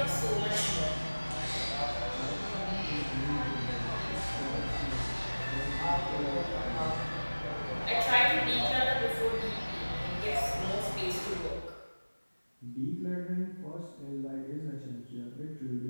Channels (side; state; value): both; inverted; correlation -1.00